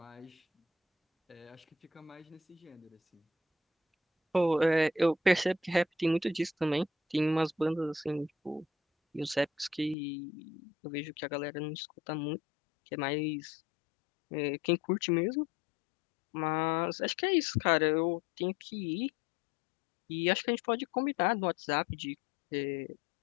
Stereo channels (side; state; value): right; drops out; at 10.0 s